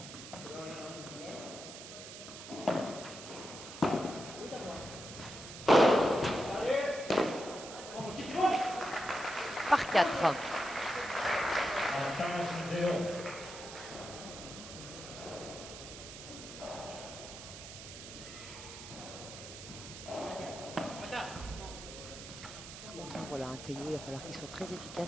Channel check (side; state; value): right; noise; hiss, 12 dB below the sound